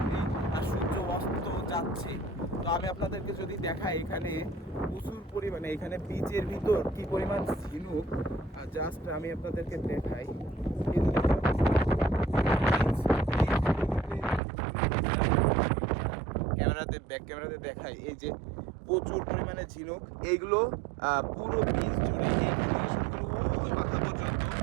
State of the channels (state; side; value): drops out; left; at 14.4 s